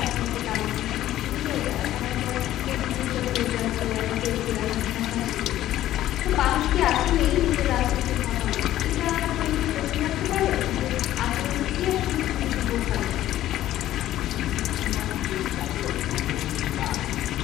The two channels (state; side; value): quieter; right; 13.6 dB